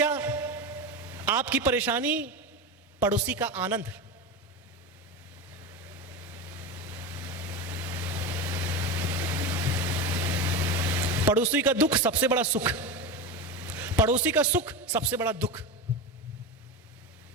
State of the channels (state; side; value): normal; both; correlation 0.21